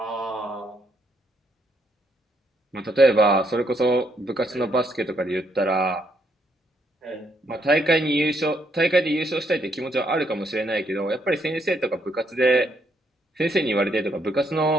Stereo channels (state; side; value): normal; both; correlation 0.73